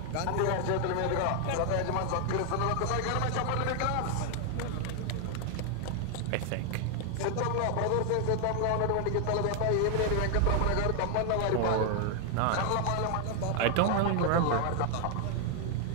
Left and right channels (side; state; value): both; different; correlation 0.00